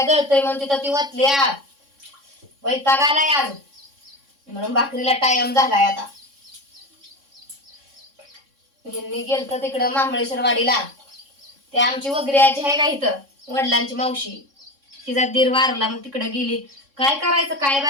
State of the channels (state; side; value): late; left; 3.6 ms